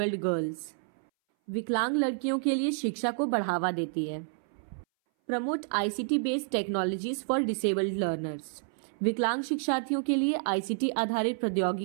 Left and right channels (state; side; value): silent; left; 58 dB below the other